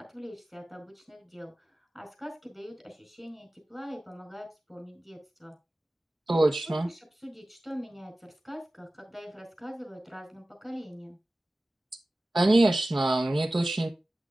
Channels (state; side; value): normal; both; correlation 0.96